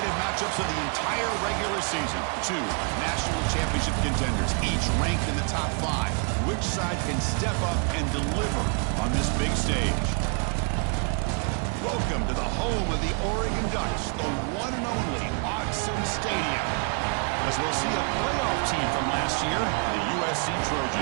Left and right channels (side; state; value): left; quieter; 38.1 dB